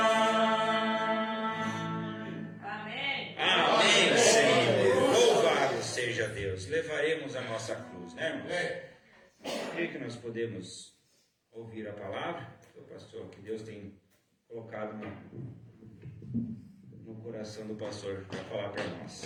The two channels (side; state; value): both; identical; correlation 1.00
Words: Amém. Amém, Senhor. Louvado seja Deus. Levaremos a nossa cruz, né, irmãos? Creio que nós podemos ouvir a palavra do pastor, que Deus tem colocado no coração do pastor para falar para